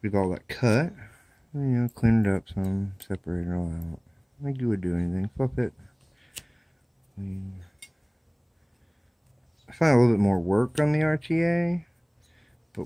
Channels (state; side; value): identical; both; correlation 1.00